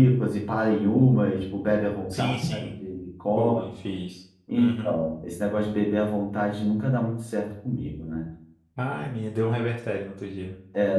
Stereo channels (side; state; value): both; identical; correlation 1.00